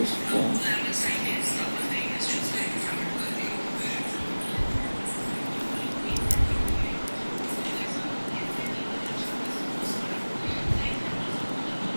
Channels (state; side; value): inverted; both; correlation -1.00